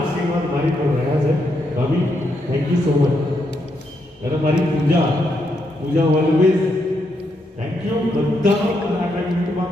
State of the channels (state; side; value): normal; both; correlation 0.79